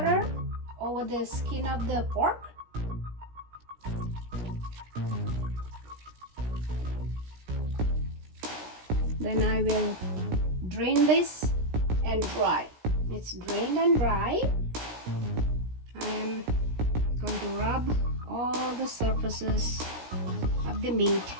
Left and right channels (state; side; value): late; left; 17 ms